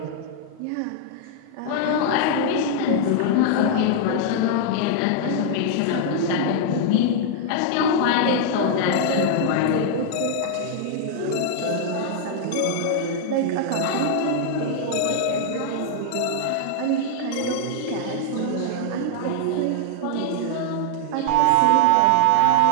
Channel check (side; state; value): both; different; correlation 0.00